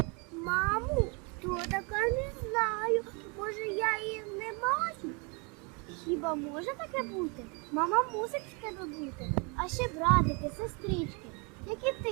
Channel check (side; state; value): left; quieter; 32.5 dB